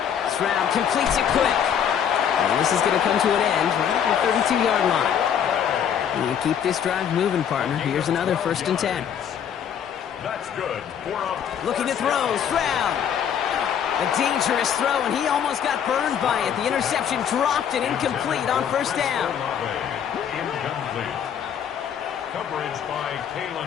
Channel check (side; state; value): right; quieter; 8.6 dB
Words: Stroud completes it quick. And this is going to come to an end right at the 32-yard line. And you keep this drive moving, partner. Here's another 1st and 10. That's good. Looking to throw, Stroud. A dangerous throw, and he almost got burned by it. The interception dropped and incomplete on 1st down. Incomplete. Coverage by